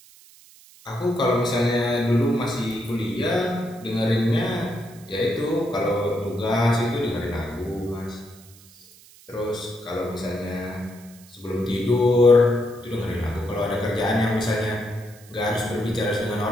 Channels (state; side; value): noise; right; hiss, 24 dB below the sound